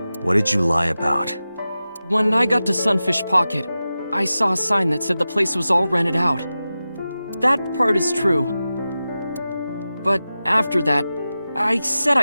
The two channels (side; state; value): both; inverted; correlation -0.94